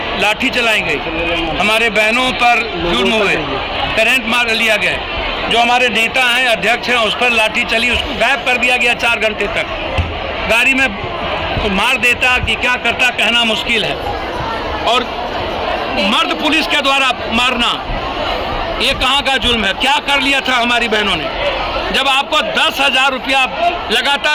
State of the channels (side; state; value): both; identical; correlation 1.00